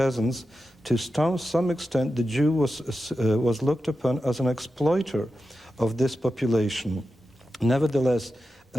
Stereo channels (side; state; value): both; normal; correlation 0.91